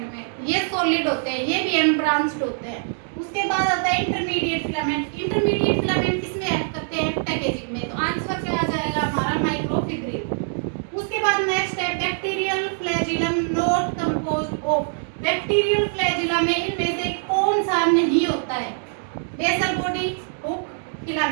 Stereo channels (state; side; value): silent; left; digital silence